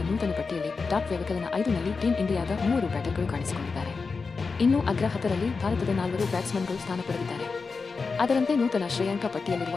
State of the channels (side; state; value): right; quieter; 4.6 dB